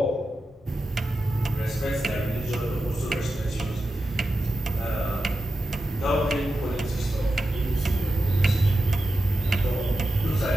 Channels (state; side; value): normal; both; correlation 0.92